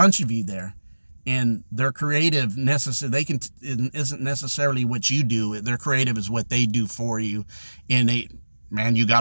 of you there, and their creative isn't necessarily what you do. Their creative is what they do for you, and you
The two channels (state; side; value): inverted; both; correlation -1.00